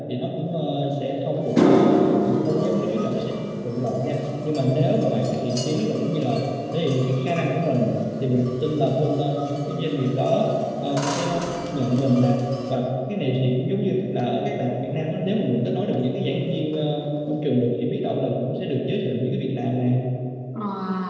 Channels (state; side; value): identical; both; correlation 1.00